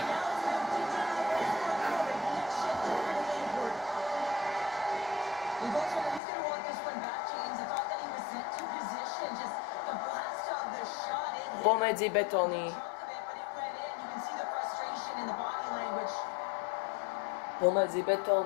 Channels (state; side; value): drops out; right; at 6.2 s